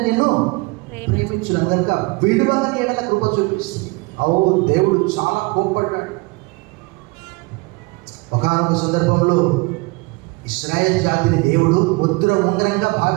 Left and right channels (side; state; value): left; quieter; 26.0 dB